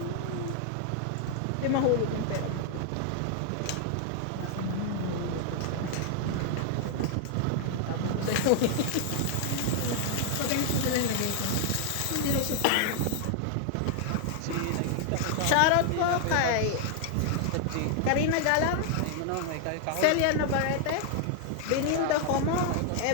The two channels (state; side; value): different; both; correlation 0.00